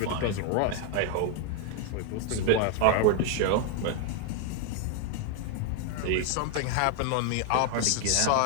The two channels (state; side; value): different; both; correlation 0.01